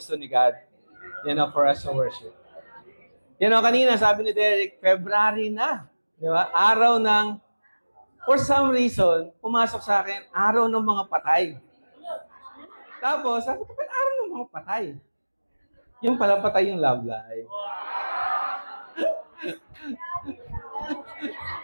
ni God, you know, for us to worship. You know, kanina sabi ni Derek, February na, di ba? Araw ng, for some reason, pumasok sa akin, araw ng mga patay. Tapos, sabi ko, araw ng mga patay? Yung pala patay yung love life.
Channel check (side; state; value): both; inverted; correlation -1.00